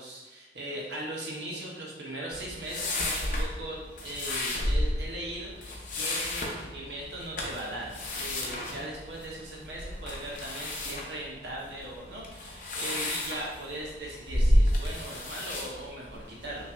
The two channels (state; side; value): normal; both; correlation 0.65